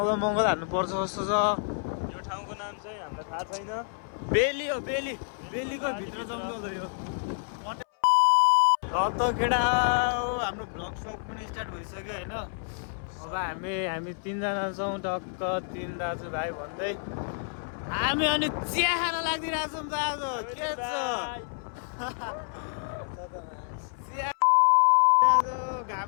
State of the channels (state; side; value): silent; right; 59 dB below the other